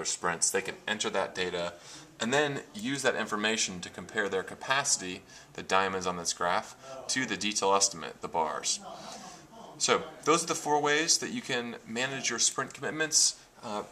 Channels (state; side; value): identical; both; correlation 1.00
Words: sprints. They can enter that data and then use that information to compare their capacity, the diamonds on this graph, to the detail estimate, the bars. So those are the 4 ways that you can manage your sprint commitments.